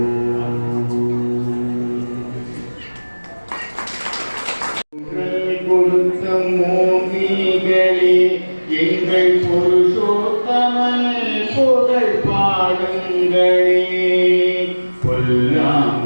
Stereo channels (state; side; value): inverted; both; correlation -1.00